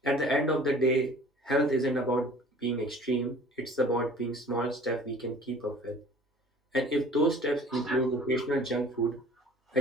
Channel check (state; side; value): normal; both; correlation 0.48